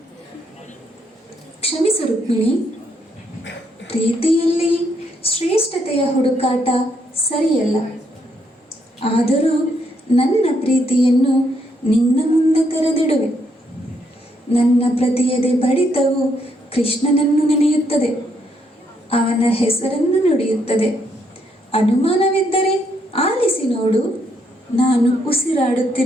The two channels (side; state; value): both; normal; correlation 0.74